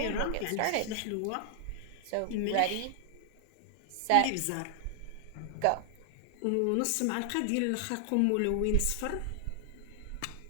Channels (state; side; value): different; both; correlation 0.00